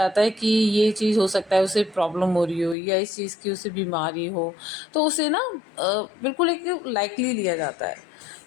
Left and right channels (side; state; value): right; drops out; at 2.8 s